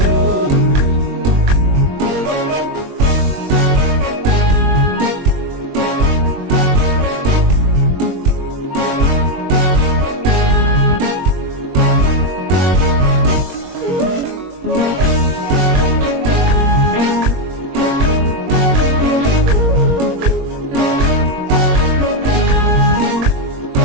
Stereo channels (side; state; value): left; late; 21 ms